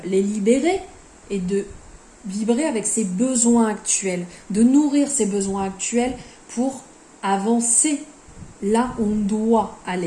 les libérer et de vibrer avec ses besoins actuels, de nourrir ses besoins actuels pour avancer là où on doit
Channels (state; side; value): identical; both; correlation 1.00